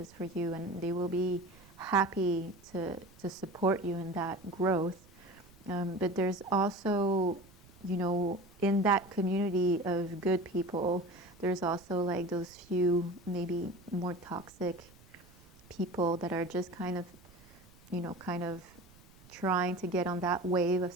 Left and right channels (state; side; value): noise; right; rumble, 25 dB below the sound